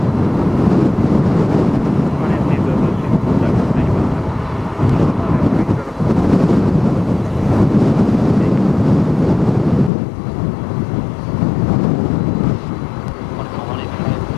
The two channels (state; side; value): drops out; right; at 9.9 s